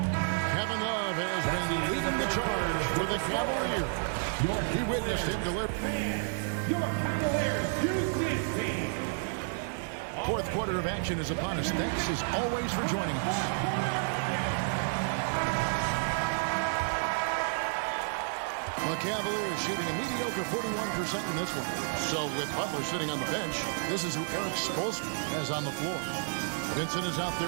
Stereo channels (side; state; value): left; silent; 57 dB below the other